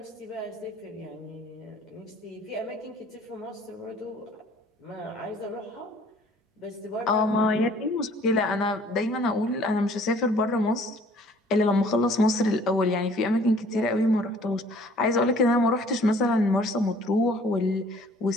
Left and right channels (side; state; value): both; normal; correlation 0.55